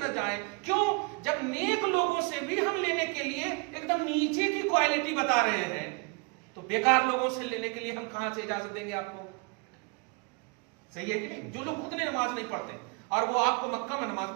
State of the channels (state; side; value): quieter; left; 29.7 dB